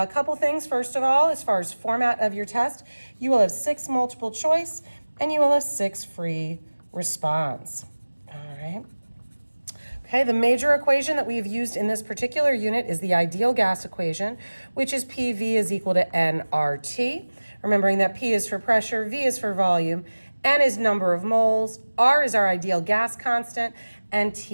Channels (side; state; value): both; inverted; correlation -1.00